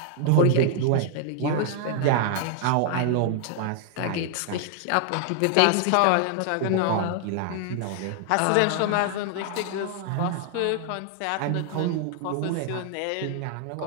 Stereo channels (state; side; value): different; both; correlation 0.00